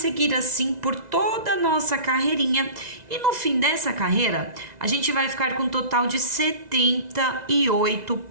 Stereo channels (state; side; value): late; left; 2.0 ms